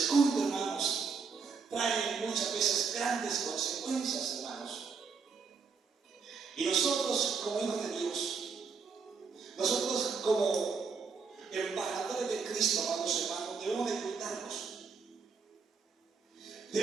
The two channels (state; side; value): quieter; left; 5.3 dB